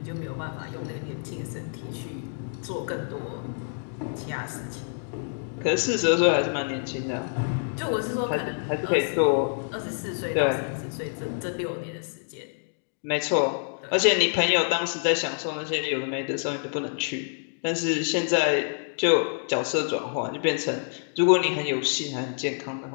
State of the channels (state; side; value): silent; right; 60 dB below the other